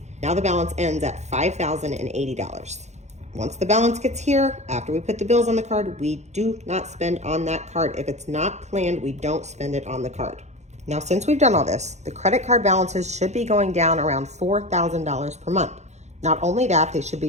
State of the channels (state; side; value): late; left; 0.33 ms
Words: Now the balance ends at $5,080. Once the balance gets here, after we put the bills on the card, we do not spend on that card. If it's not planned, we don't spend it on the card. Now, since we've done all this, the credit card balances should be going down around $4,000 per month. Not only that, they should